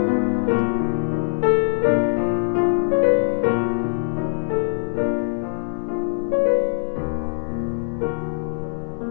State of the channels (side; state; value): right; silent; digital silence